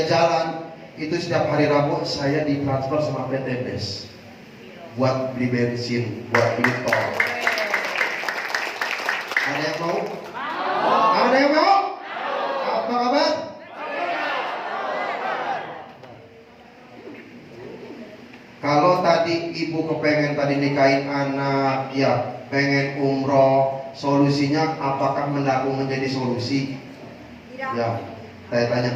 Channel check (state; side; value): identical; both; correlation 1.00